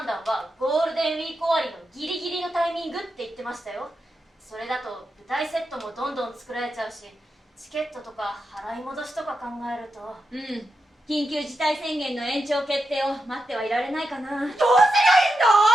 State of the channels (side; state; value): both; normal; correlation 0.87